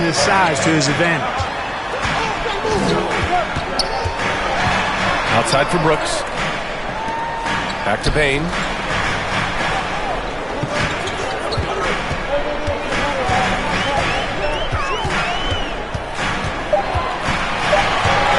his size to his advantage. Outside for Brooks. Back to Bane.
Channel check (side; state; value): both; identical; correlation 1.00